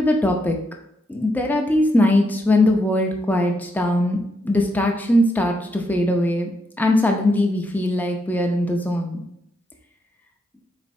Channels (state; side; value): normal; both; correlation 0.80